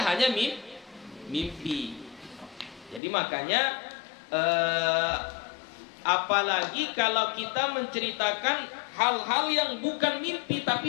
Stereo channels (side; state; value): right; drops out; at 3.0 s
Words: mimpi. Jadi makanya apalagi kalau kita menceritakan hal-hal yang bukan mimpi